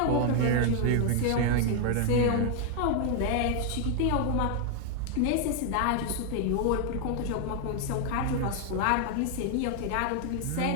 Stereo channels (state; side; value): different; both; correlation 0.00